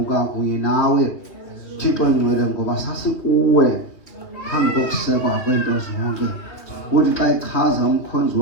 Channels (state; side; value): late; right; 3.0 ms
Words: kunye nawe. Thixo ngcwele ngoba sasikuwe phambi kokusekwa kwento zonke. Uthi xa ichaza umkhonzi